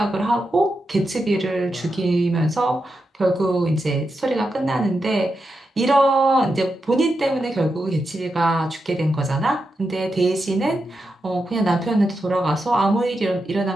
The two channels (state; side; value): normal; both; correlation 0.87